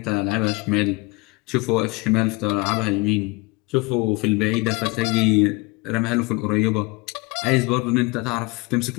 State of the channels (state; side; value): quieter; right; 25.0 dB